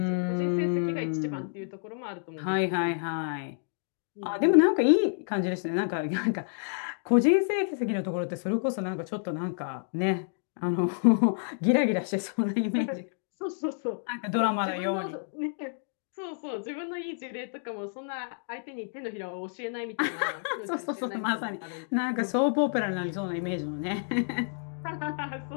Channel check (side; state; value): right; silent; digital silence